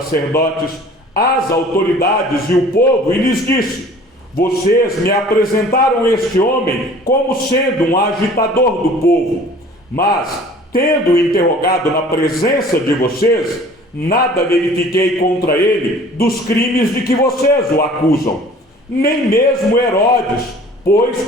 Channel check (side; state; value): both; normal; correlation 0.49